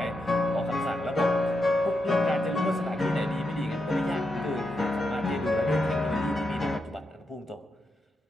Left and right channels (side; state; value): both; normal; correlation 0.84